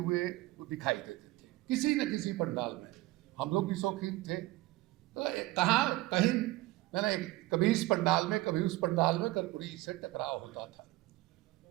वो दिखाई देते थे, किसी न किसी पंडाल में। हम लोग भी शौकीन थे, तो कहीं मैंने कभी इस पंडाल में कभी उस पंडाल में कर्पूरी से टकराव होता था।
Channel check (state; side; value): quieter; left; 18.9 dB